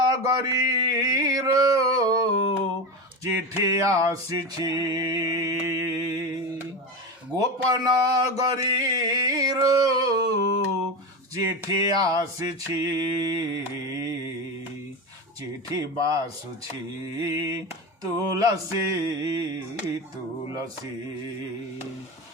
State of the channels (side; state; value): both; normal; correlation 0.20